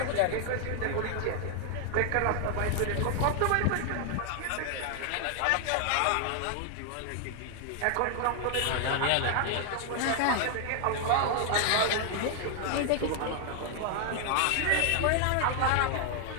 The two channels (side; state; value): both; different; correlation 0.00